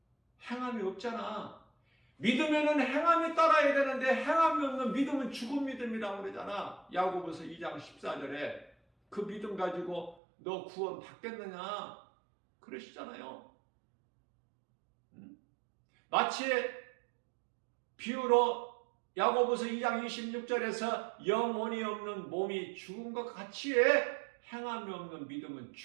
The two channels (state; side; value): drops out; left; at 10.2 s